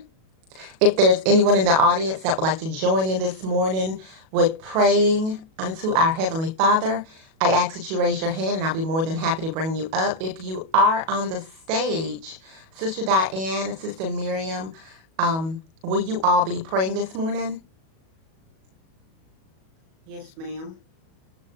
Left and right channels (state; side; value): late; left; 37 ms